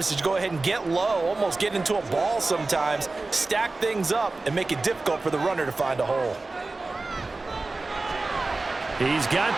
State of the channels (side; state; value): left; quieter; 3.4 dB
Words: is to go ahead and get low, almost get into a ball sometimes, stack things up, and make it difficult for the runner to find a hole. He's got